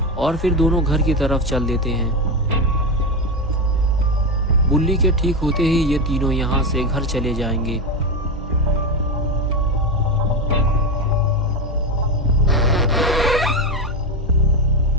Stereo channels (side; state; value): both; normal; correlation 0.14